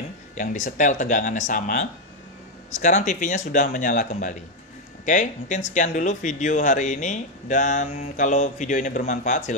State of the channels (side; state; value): both; normal; correlation 0.04